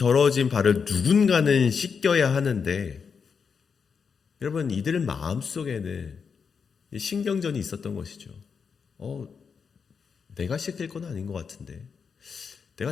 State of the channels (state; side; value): quieter; right; 6.0 dB